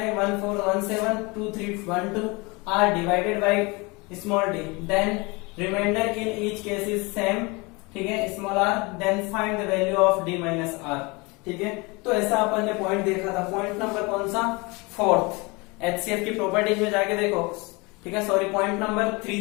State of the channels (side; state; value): right; quieter; 26.7 dB